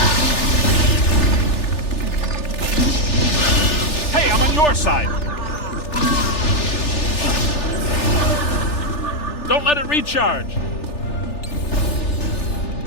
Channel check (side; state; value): right; late; 3.4 ms